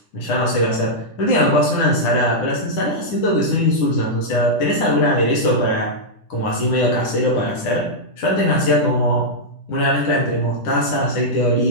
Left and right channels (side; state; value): right; late; 10 ms